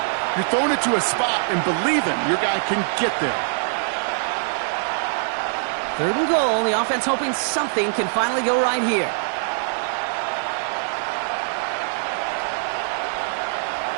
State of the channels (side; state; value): left; silent; digital silence